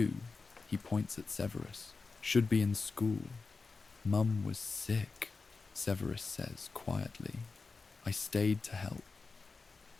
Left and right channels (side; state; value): right; quieter; 4.2 dB